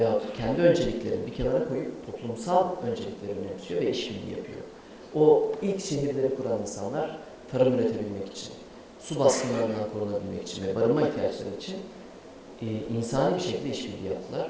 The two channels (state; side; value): identical; both; correlation 1.00